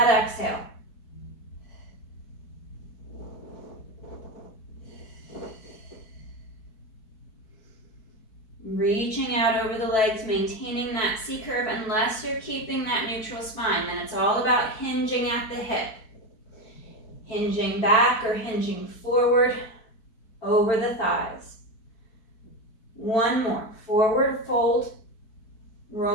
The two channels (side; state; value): right; late; 4.6 ms